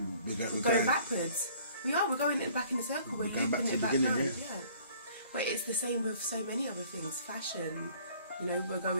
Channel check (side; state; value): both; inverted; correlation -0.55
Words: going backwards? We are. We're going back in a circle. We're going back to the it back beginning, round. yeah. Yeah. But it's the same with so many other things. Fashion. You know, we're